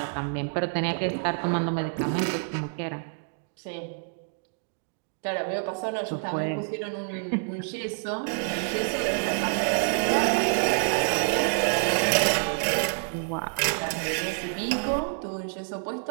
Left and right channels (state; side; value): silent; left; 59 dB below the other